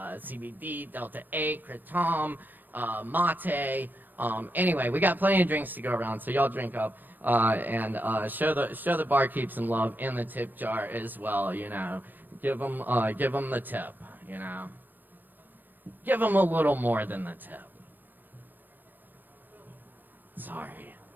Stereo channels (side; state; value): left; late; 0.091 ms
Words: Delta 8, Kratom, mate. Anyway, we got plenty of drinks to go around, so y'all drink up and show the barkeep some love in the tip jar as well. You know, give them the tip. You know, give them a little more than the tip. Sorry.